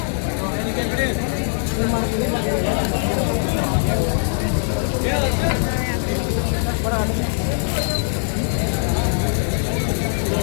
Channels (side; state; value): right; silent; 62 dB below the other